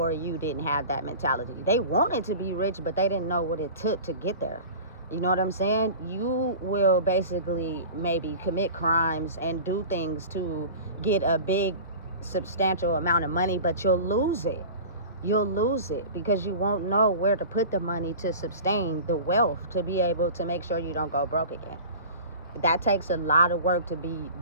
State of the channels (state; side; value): inverted; both; correlation -0.38